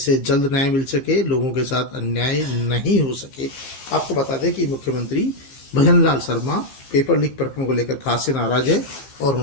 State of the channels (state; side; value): late; right; 15 ms